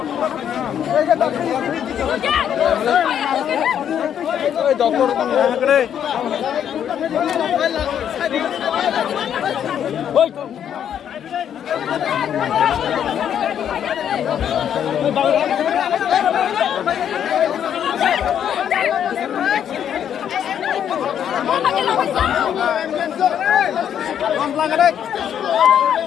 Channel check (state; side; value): quieter; right; 9.2 dB